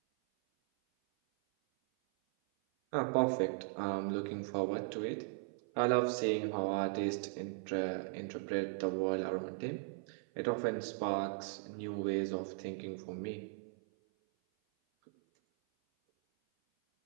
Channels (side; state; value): left; silent; 53 dB below the other